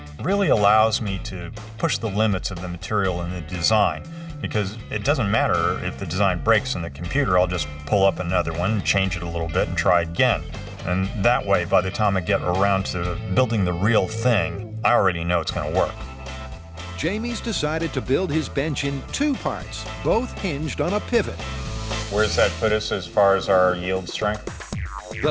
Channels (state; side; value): identical; both; correlation 1.00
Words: really allows me to push the limits of the material and the design, because it doesn't matter if the design breaks in the computer. I'll just pull up another one, change it a little bit, and try again. And that way, by the time I get around to building the real thing, I already know it's going to work. Jamie's decided to build his bench in 2 parts, both hinged on a pivot. Where's that put us as far as our yield strength?